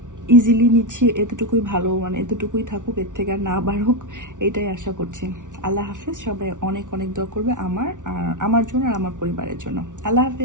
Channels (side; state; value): left; late; 0.87 ms